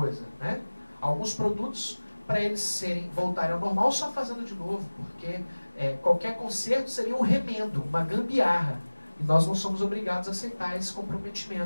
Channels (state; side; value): inverted; both; correlation -1.00